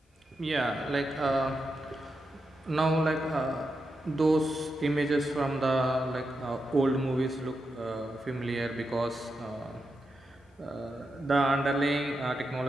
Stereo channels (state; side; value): normal; both; correlation 0.87